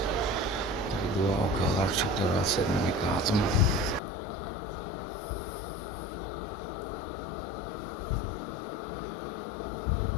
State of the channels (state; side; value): drops out; right; at 4.0 s